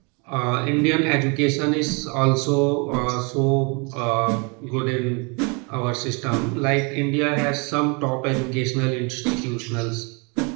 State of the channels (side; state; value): left; quieter; 32.3 dB